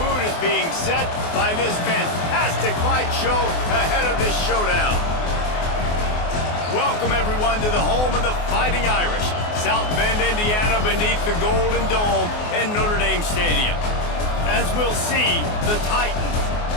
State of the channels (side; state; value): right; late; 24 ms